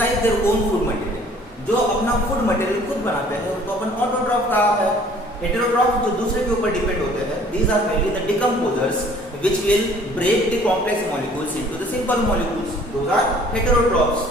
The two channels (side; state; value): both; normal; correlation 0.54